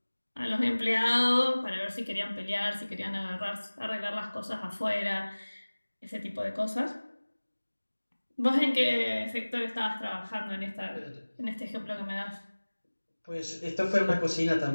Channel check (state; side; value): inverted; both; correlation -1.00